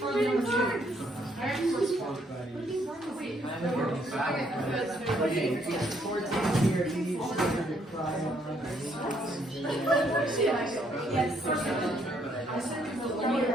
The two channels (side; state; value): both; normal; correlation 0.70